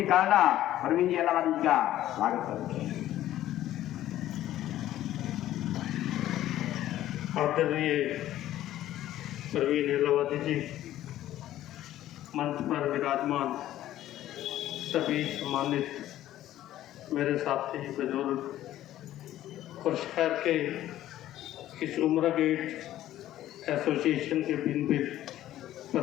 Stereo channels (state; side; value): quieter; right; 13.4 dB